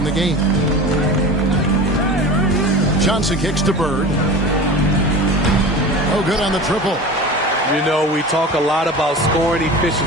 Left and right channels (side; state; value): both; normal; correlation 0.33